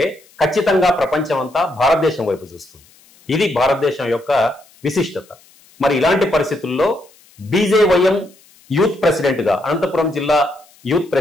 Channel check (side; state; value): left; noise; hiss, 29 dB below the sound